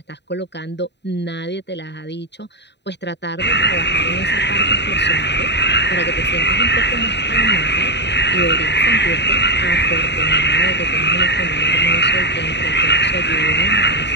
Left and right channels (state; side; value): late; right; 0.50 ms